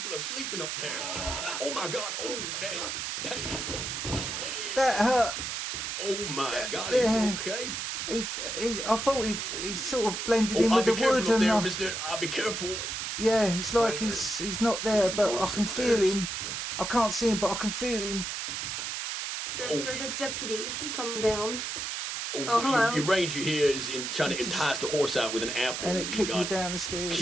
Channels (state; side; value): noise; right; hiss, 4 dB below the sound